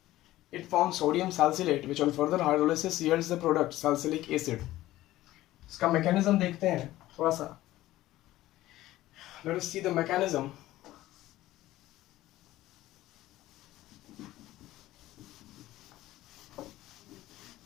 it forms sodium salicylate, which on further hydrolysis yields the product salicylic acid. इसका mechanism देखते हैं थोड़ा सा. Let us see the mechanism.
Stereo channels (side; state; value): right; quieter; 15.8 dB